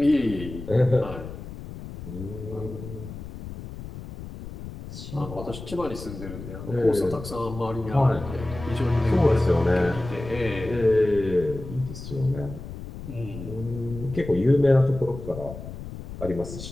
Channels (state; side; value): noise; left; rumble, 11 dB below the sound